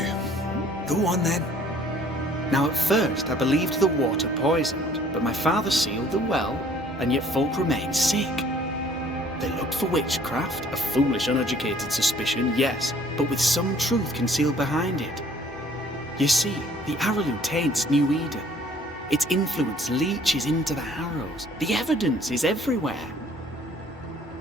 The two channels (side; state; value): both; normal; correlation 0.57